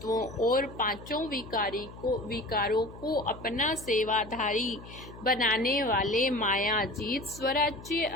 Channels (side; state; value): left; noise; hum, 16 dB below the sound